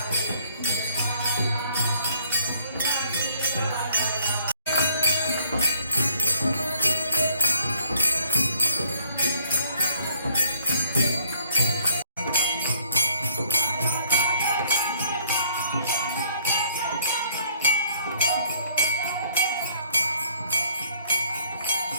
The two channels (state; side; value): inverted; both; correlation -0.62